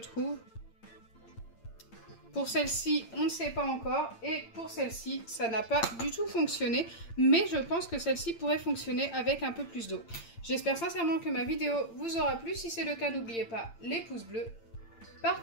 Pour celle-ci, on ne sait pas encore. Et pour celle-ci, ça n'a pas du tout fonctionné. Mais je pense que celle-ci pourrait fonctionner avec un peu plus d'eau. J'espère sincèrement que ma vidéo vous aura plu. Si c'est le cas, n'oubliez pas les pouces bleus,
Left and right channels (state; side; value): late; right; 8.8 ms